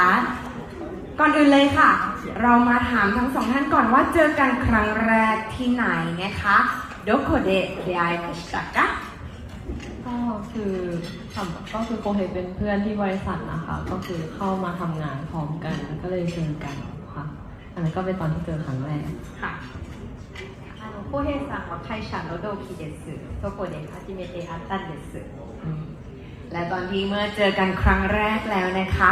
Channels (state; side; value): identical; both; correlation 1.00